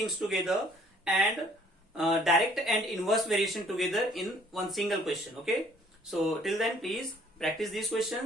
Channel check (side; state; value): both; normal; correlation 0.59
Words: together and direct and inverse variation together in one single question. Okay. So till then, please practice these